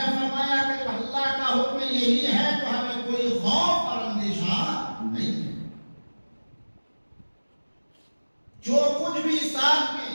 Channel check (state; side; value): inverted; both; correlation -1.00